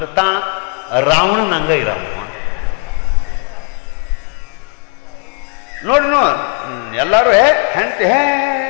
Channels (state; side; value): quieter; right; 35.2 dB